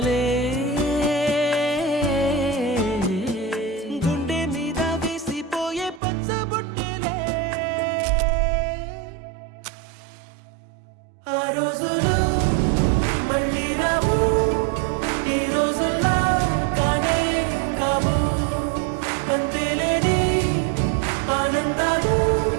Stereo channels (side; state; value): left; drops out; at 6.0 s